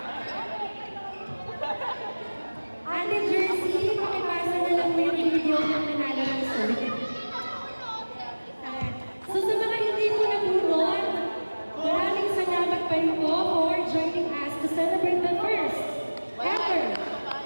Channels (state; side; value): inverted; both; correlation -1.00